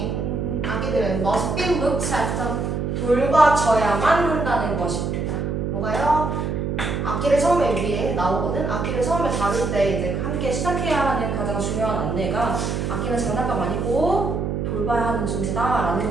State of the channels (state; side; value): noise; right; hum, 1 dB below the sound